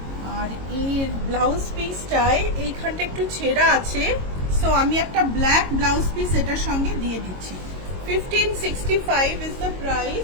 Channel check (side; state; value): left; late; 22 ms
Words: আর এর ব্লাউজ পিসটায় এইখানটা একটু ছেঁড়া আছে, সো আমি একটা ব্ল্যাক ব্লাউজ পিস এটার সঙ্গে দিয়ে দিচ্ছি। 1565 ইজ দ্য